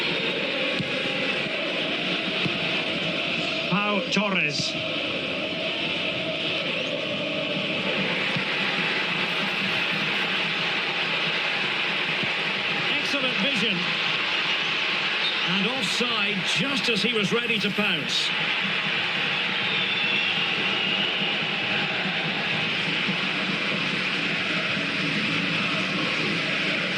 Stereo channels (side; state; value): both; identical; correlation 1.00